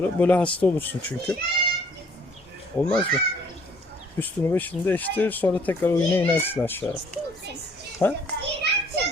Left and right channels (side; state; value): both; normal; correlation 0.60